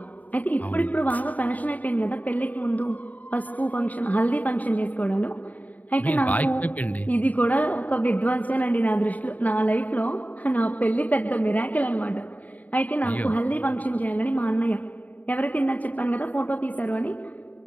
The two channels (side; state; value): right; late; 0.075 ms